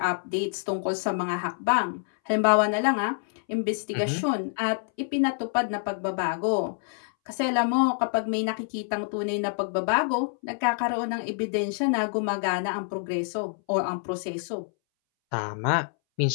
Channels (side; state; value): right; silent; 60 dB below the other